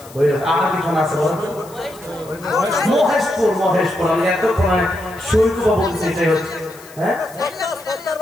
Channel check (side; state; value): left; noise; hiss, 22 dB below the sound